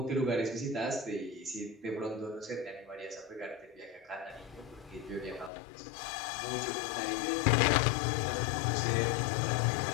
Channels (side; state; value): right; drops out; at 5.5 s